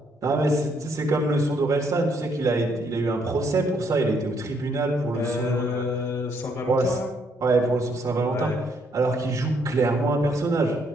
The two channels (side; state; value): both; normal; correlation 0.71